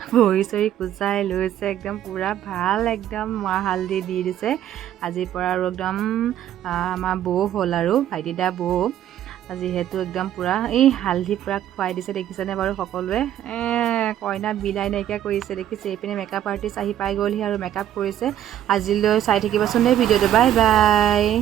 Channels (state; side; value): quieter; left; 11.3 dB